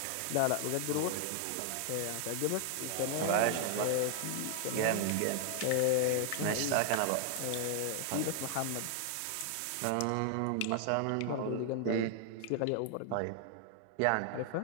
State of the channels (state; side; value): different; both; correlation 0.00